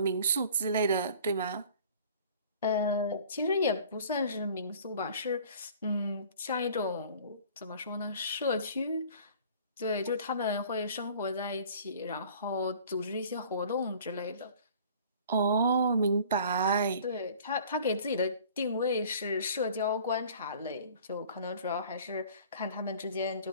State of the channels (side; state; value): both; inverted; correlation -0.48